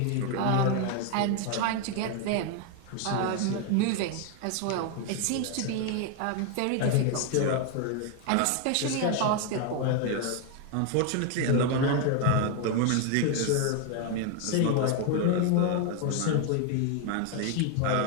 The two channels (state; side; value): different; both; correlation 0.01